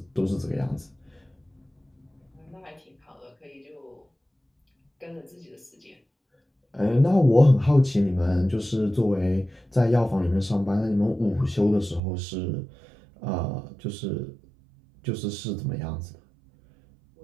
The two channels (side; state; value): left; drops out; at 12.0 s